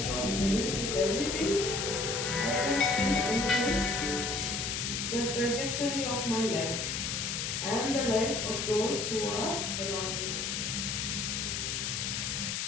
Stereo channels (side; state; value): left; noise; hiss, 1 dB below the sound